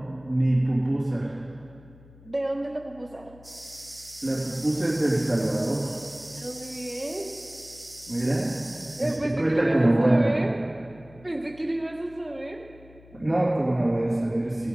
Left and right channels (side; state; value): left; noise; hum, 23 dB below the sound